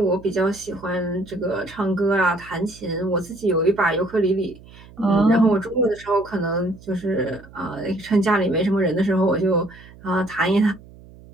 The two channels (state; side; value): noise; right; hum, 21 dB below the sound